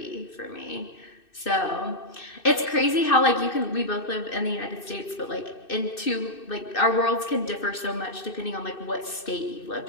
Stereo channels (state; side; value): late; right; 2.6 ms